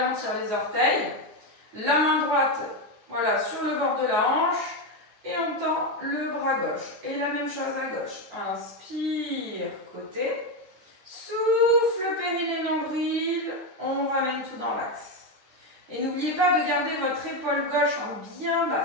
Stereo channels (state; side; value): late; left; 9.2 ms